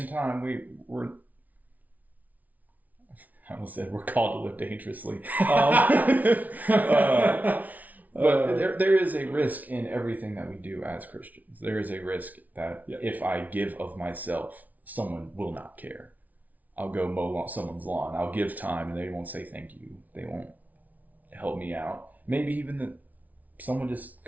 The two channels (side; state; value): left; late; 0.075 ms